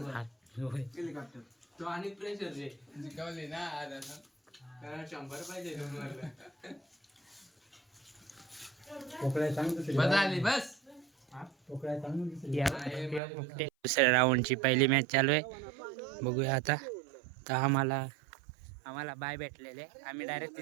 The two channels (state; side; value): drops out; left; at 13.2 s